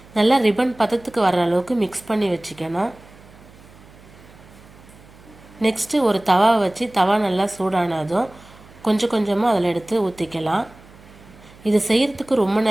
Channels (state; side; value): noise; right; hum, 23 dB below the sound